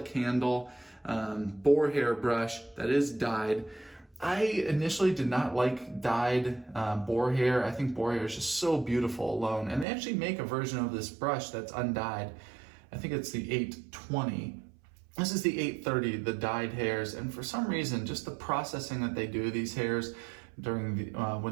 handle, boar hair brush that is dyed. I initially did not like dyed boar hair. I think boar hair is just so beautiful alone. And they actually make a version of this brush that's undyed. I think it's the 820. This is the 830, the dyed hairs, and for some reason, just the processing that they do these hairs during the,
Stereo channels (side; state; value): left; drops out; at 9.9 s